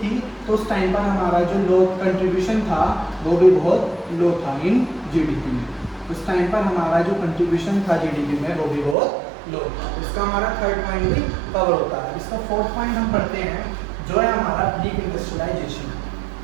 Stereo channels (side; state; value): left; drops out; at 9.0 s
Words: तो उस टाइम पर हमारा जो लो कंट्रीब्यूशन था वो भी बहुत लो था इन जीडीपी में। उस टाइम पर हमारा जो कंट्रीब्यूशन था जीडीपी में वो भी बहुत लो था। इसका हमारा थर्ड पॉइंट भी कवर होता है। इसका फोर्थ पॉइंट हम पढ़ते हैं जो है हमारा ब्लीक इंडस्ट्रियलाइजेशन।